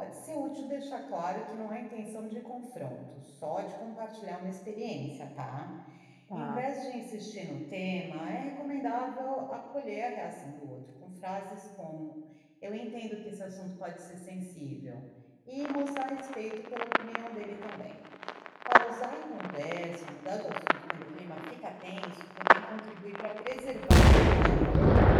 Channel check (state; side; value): identical; both; correlation 1.00